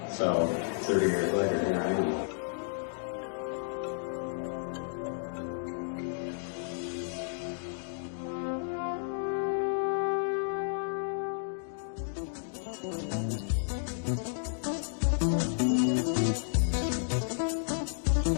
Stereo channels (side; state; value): right; silent; digital silence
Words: So 30 years later, here I am.